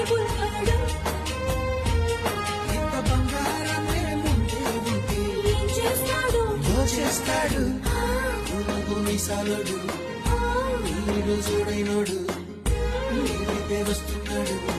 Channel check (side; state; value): both; identical; correlation 1.00